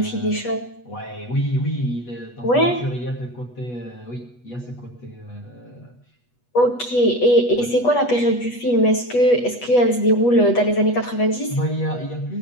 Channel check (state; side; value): late; right; 8.2 ms